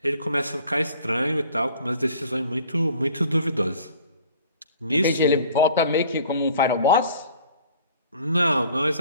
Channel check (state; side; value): inverted; both; correlation -0.51